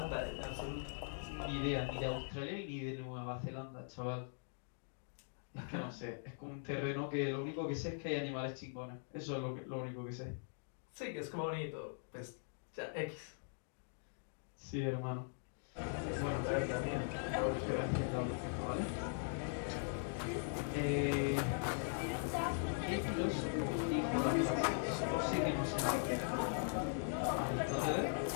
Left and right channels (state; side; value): silent; right; digital silence